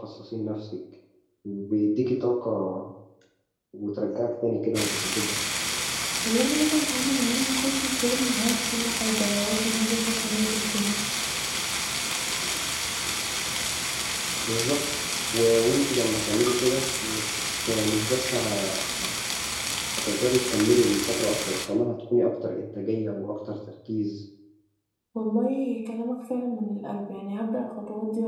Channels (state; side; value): identical; both; correlation 1.00